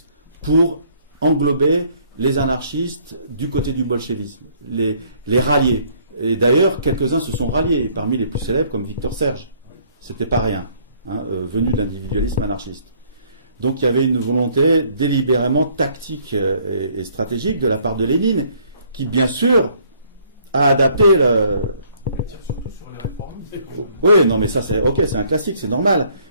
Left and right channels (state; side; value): inverted; both; correlation -0.62